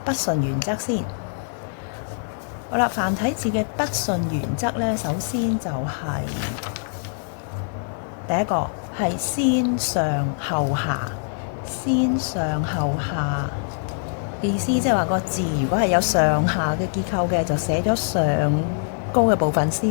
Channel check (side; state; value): right; silent; digital silence